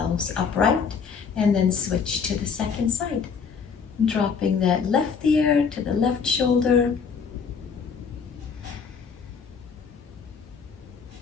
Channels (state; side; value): quieter; right; 6.0 dB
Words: upright, and then switch to the second side. Dropping that left ear to the left shoulder.